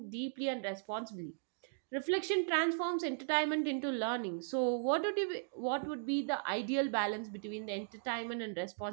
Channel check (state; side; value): silent; left; digital silence